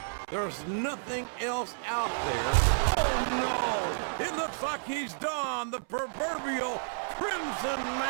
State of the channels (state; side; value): silent; left; 57 dB below the other